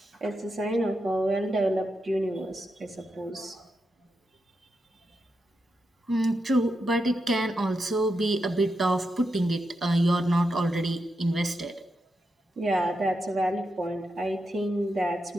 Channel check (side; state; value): both; normal; correlation 0.86